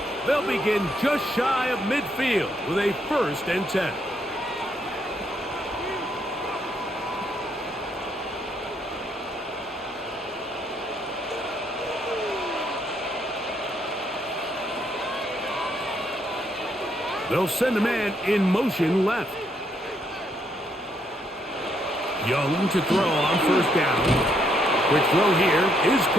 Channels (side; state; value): both; normal; correlation 0.73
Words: They'll begin just shy of midfield with a first and 10. They'll send a man in motion left. Young to throw on first down. Quick throw here is